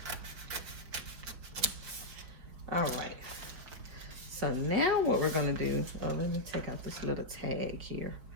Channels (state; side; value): late; left; 5.6 ms